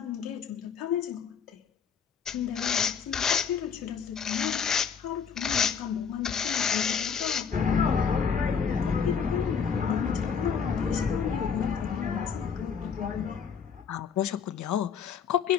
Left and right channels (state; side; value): quieter; right; 6.7 dB